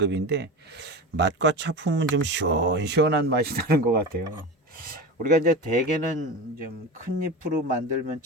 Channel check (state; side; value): normal; both; correlation 0.27